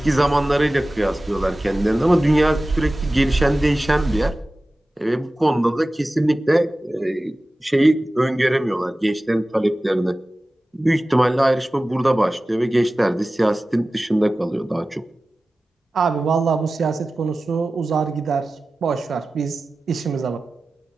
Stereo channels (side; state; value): both; normal; correlation 0.96